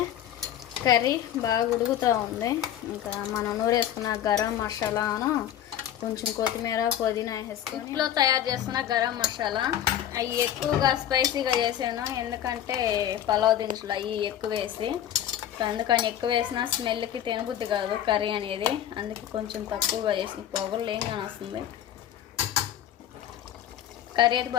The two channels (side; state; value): right; quieter; 11.0 dB